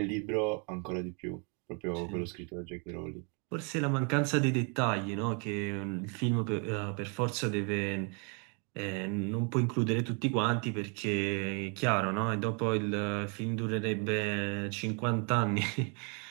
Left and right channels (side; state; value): left; quieter; 36.4 dB